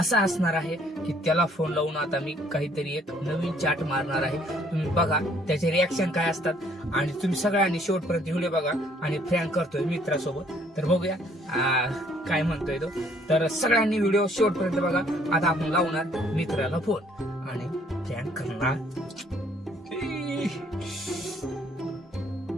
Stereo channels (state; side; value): normal; both; correlation 0.63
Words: असणार आहे की त्याला फोन लावून आता मी काहीतरी एक नवीन चाट मारणार आहे. तुम्ही बघा त्याचे रिॲक्शन काय असतात आणि तुम्ही सगळ्यांनी शेवटपर्यंत व्हिडिओ बघा आणि फ्रँक करतोय मित्रासोबत. तर बघूया काय म्हणतोय तो. तर सगळ्यांनी व्हिडिओ शेवटपर्यंत बघा. आता आपण लावणार मित्राला फोन आणि फ्रँक करणार.